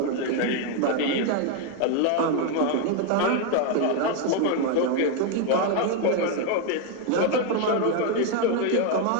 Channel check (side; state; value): both; different; correlation 0.01